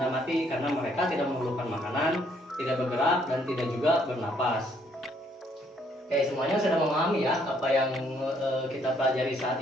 mati karena mereka tidak memerlukan makanan, tidak bergerak dan tidak juga bernapas. Oke, semuanya sudah memahami ya apa yang kita pelajari saat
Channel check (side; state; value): both; normal; correlation 0.67